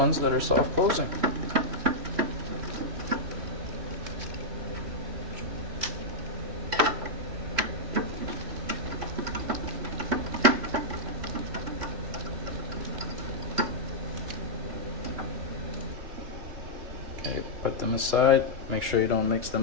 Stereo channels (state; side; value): late; left; 3.1 ms